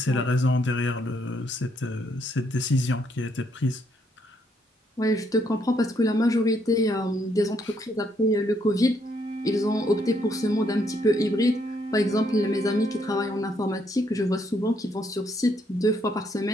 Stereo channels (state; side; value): normal; both; correlation 0.72